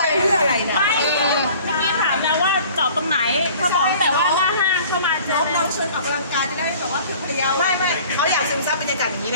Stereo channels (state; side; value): inverted; both; correlation -0.48